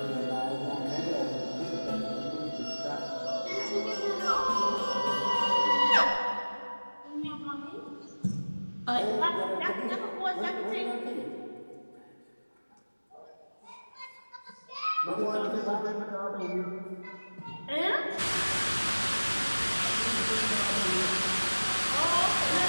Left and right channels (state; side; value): inverted; both; correlation -1.00